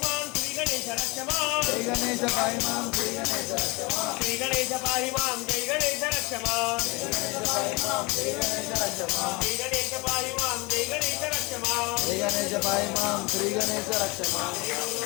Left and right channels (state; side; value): quieter; right; 26.1 dB